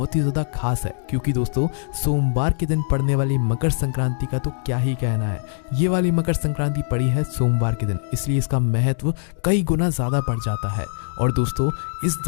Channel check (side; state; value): right; silent; digital silence